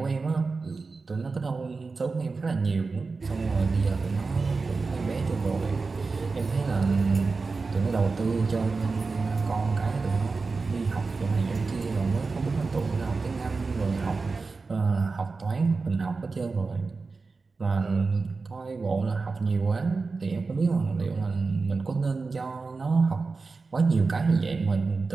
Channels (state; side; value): quieter; left; 4.2 dB